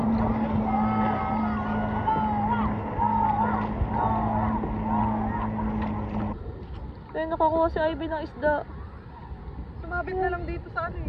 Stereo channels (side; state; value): both; identical; correlation 1.00